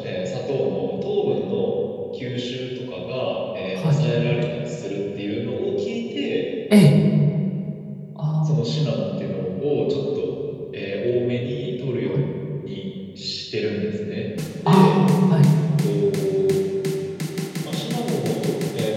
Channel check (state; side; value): identical; both; correlation 1.00